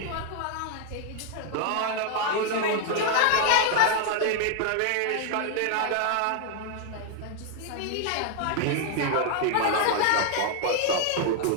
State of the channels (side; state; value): both; different; correlation 0.00